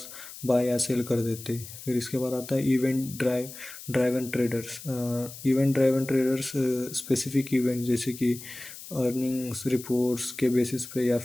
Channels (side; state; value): left; noise; hiss, 14 dB below the sound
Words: बाय या सेल कर देते। फिर इसके बाद आता है event driven traders. Event driven traders specific event जैसे कि अर्निंग्स रिपोर्ट्स के बेसिस पे या